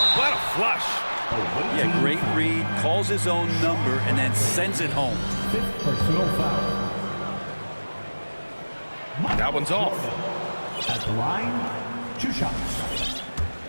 What a flush. Yeah, great read, calls his own number, and then sends it home. 5th personal foul. That one's off. At the line, 2 shots.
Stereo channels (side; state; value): both; inverted; correlation -1.00